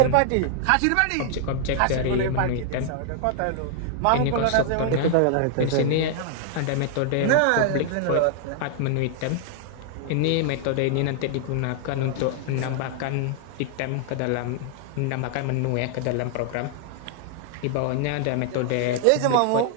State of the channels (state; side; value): different; both; correlation 0.00